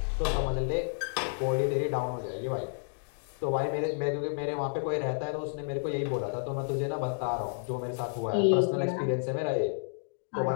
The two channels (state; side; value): silent; right; digital silence